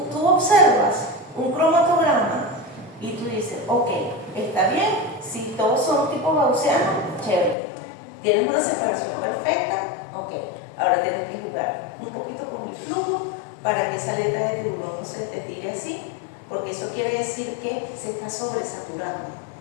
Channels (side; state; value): right; drops out; at 7.6 s